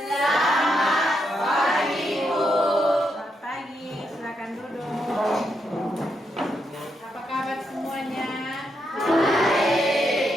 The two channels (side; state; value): both; normal; correlation 0.81